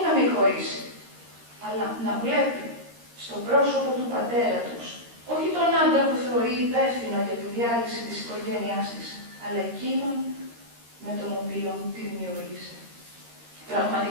να μην χωρίσει, αλλά να βλέπει στο πρόσωπο του πατέρα τους, όχι τον άντρα που θεωρεί υπεύθυνο για τη διάλυση της οικογένειάς της, αλλά εκείνον με τον οποίο τη δημιούργησε.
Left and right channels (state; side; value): late; left; 13 ms